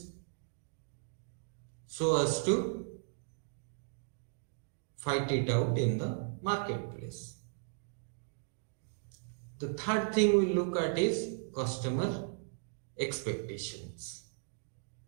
so as to fight it out in the marketplace. The third thing we look at is customer expectations.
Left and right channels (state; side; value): silent; left; digital silence